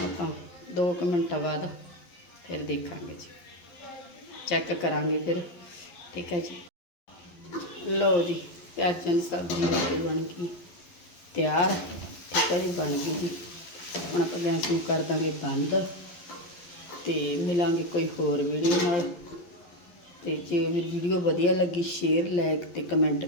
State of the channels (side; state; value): right; late; 11 ms